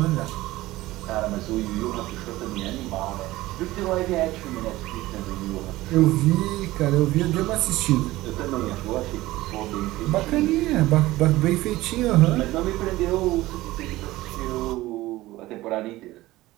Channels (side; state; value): left; quieter; 17.7 dB